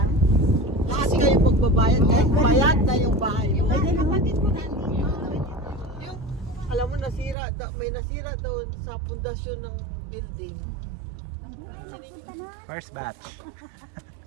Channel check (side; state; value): left; drops out; at 7.4 s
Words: lahat kayo pagbabayad, kahit bayad na yung bahay mo. Ay, kapatid ko nandito. Yung, alam mo, may nasira daw sa pundasyon ng building. First batch.